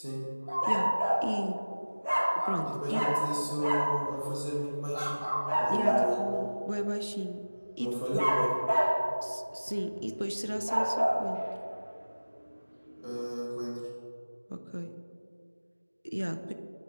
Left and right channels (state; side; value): inverted; both; correlation -1.00